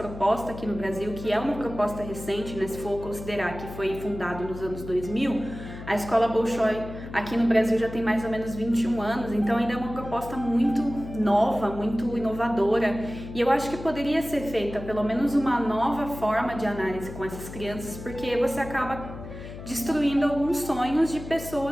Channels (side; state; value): left; noise; hum, 12 dB below the sound